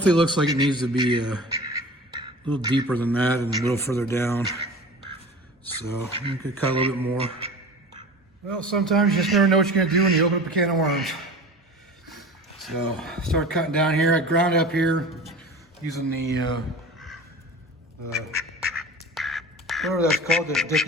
looks like it needs to be a little deeper than that and a little further down. So you could cut a little bit more. Well, sometimes you just never know what you're gonna do when you open up a can of worms. So start cutting down here. I ground up here using the whatever that's called that Dick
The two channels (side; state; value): both; normal; correlation 0.36